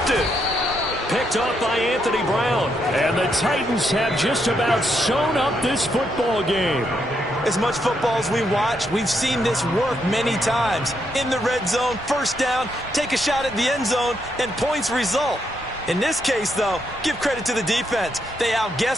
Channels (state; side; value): normal; both; correlation 0.78